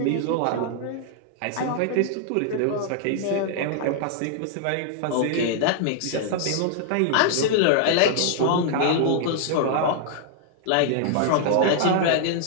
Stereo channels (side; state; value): both; different; correlation -0.01